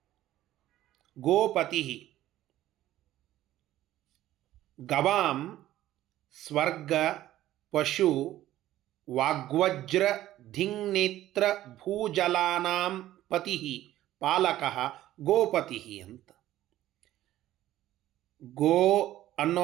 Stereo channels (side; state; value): left; quieter; 14.0 dB